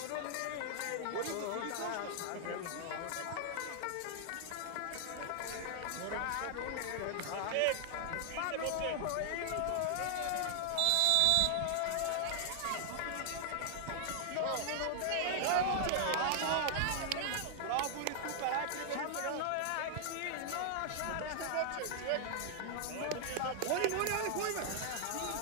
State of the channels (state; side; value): different; both; correlation 0.00